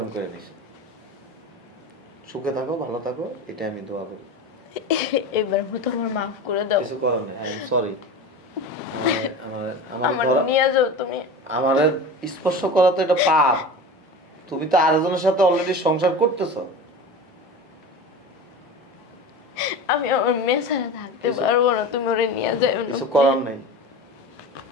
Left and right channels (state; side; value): normal; both; correlation 0.31